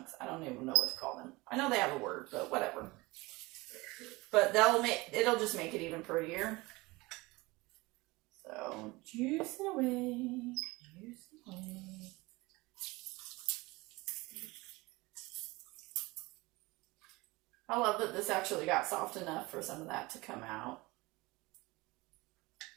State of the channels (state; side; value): quieter; left; 22.4 dB